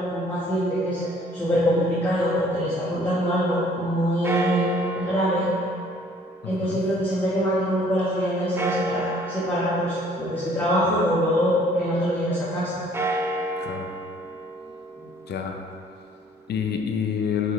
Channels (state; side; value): normal; both; correlation 0.58